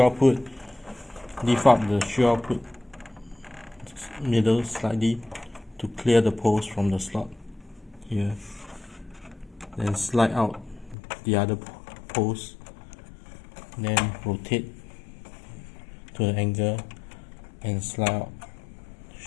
output, lift up the shield output middle slightly to clear the post from the slot here. Then slide out the other post, then rotate to the angle and slide out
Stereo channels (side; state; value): right; drops out; at 11.0 s